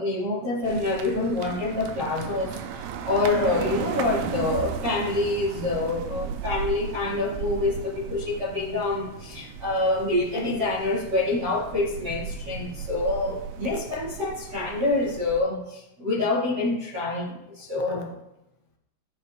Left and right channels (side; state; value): left; late; 16 ms